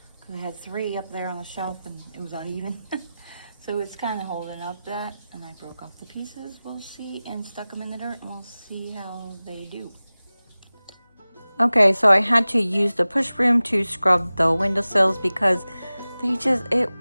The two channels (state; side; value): inverted; both; correlation -0.97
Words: because I had 3 up there on the shelf and it was uneven. So it's kind of holding up that, and I broke off the pieces, we'll see, and stuck them in the dirt, and we'll see how they do. Okay, so I had to use the push broom to scrub the windowsills because they just,